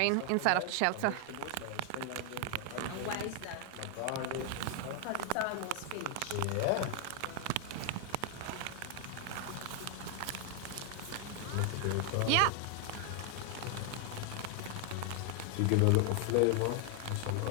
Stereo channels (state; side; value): different; both; correlation 0.00